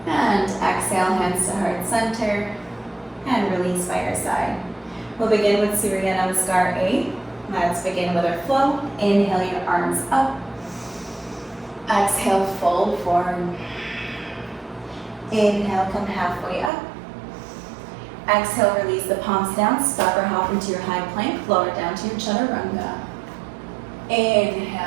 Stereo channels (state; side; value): drops out; left; at 16.7 s